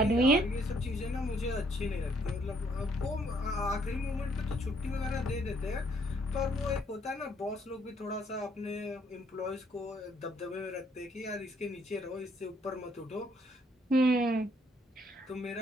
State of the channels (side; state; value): both; normal; correlation 0.67